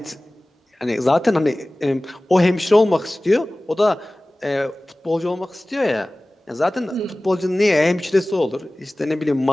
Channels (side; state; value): both; normal; correlation 0.98